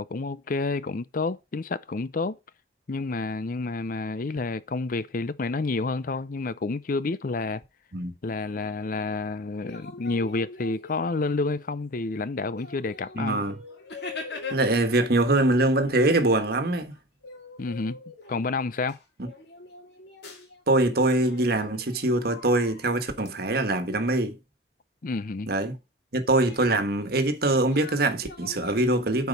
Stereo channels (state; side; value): normal; both; correlation 0.32